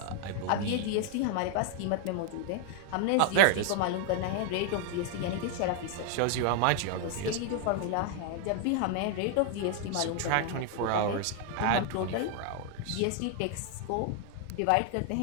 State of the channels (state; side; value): different; both; correlation 0.00